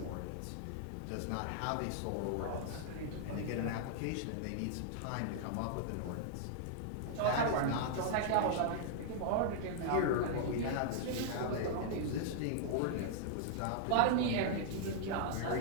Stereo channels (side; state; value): both; different; correlation -0.01